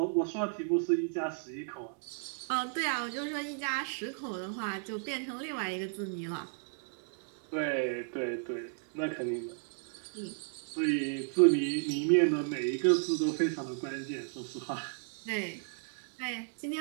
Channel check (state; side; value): silent; left; 55 dB below the other